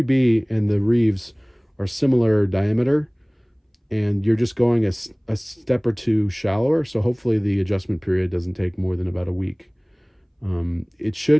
and the Reeves are similar diameter, and you're just going a step or 2 shallower. So hopefully the adjustment period doesn't take more than about a week. It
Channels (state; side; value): identical; both; correlation 1.00